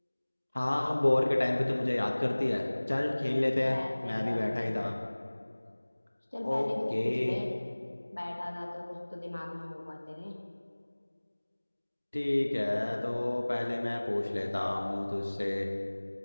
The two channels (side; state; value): both; inverted; correlation -1.00